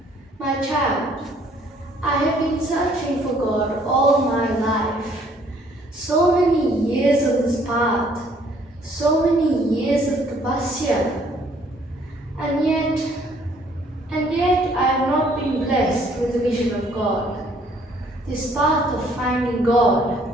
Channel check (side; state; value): both; normal; correlation 0.62